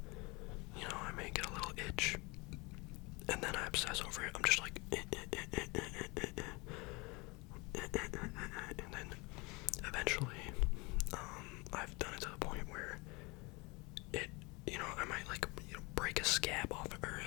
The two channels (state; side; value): quieter; right; 26.6 dB